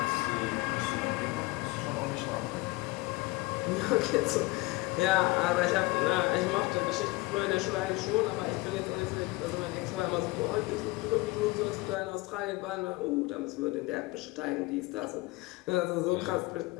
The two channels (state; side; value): quieter; right; 22.4 dB